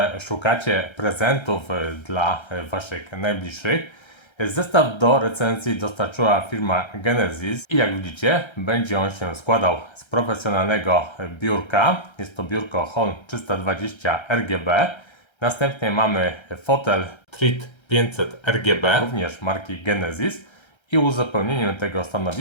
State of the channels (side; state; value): right; late; 1.3 ms